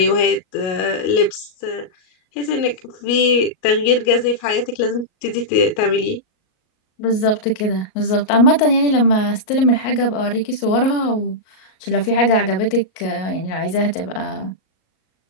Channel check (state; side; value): late; right; 38 ms